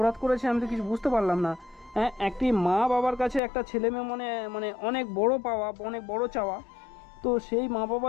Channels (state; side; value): drops out; right; at 3.4 s